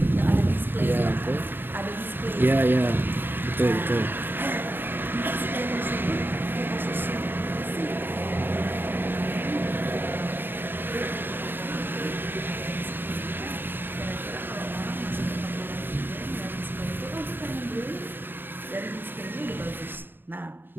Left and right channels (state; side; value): late; left; 0.096 ms